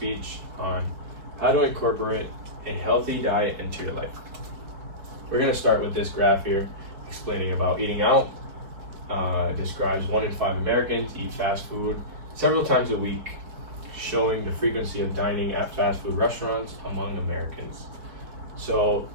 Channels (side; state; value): left; late; 4.6 ms